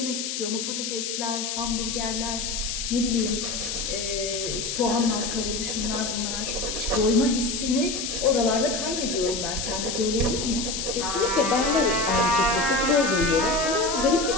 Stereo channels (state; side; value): noise; left; hiss, 3 dB below the sound